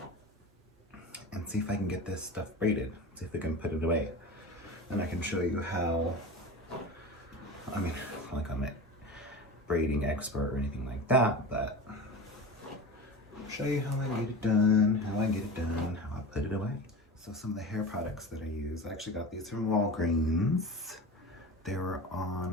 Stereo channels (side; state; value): both; normal; correlation 0.31